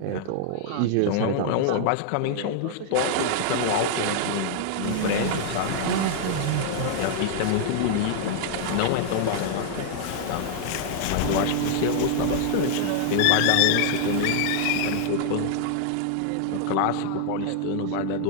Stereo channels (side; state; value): both; different; correlation 0.00